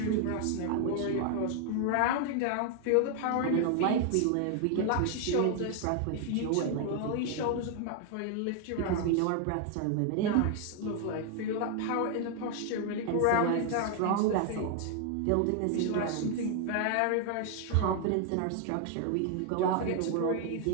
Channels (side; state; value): both; different; correlation 0.00